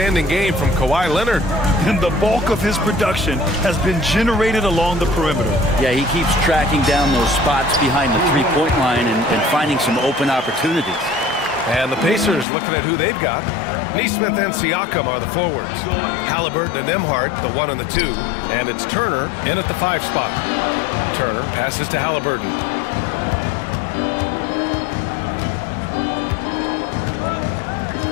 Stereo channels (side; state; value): right; drops out; at 12.5 s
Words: game from Kawhi Leonard. And the bulk of his production has been generated along the perimeter. Yeah, he keeps tracking down those spots behind the three-point line and finding some open opportunities. And the Pacers looking at who they've got. Nesmith and Siakam are the forwards. Halliburton and Nembhard, the 1 and the 2. And it's Turner in at the 5 spot. Turner passes to Halliburton.